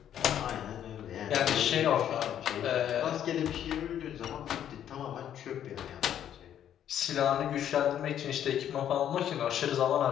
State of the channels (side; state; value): right; quieter; 10.2 dB